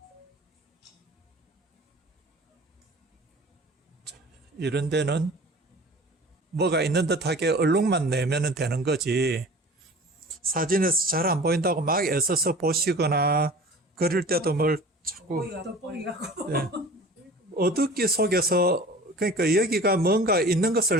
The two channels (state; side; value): normal; both; correlation 0.42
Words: 이런 데는 뭐가 있는 듯하게 얼룩만 내면 되는 거지 사진에서 잘 안 보인다고 막 애써서 보시거나 그럴 때도 뭘 자꾸 네. 어둡기 속에서 그러니까 여기가 뭔가 있는 것을